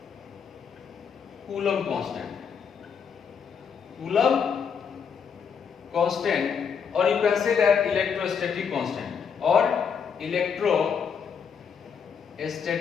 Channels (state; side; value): quieter; right; 6.8 dB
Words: Coulomb constant, or you can say that electrostatic constant or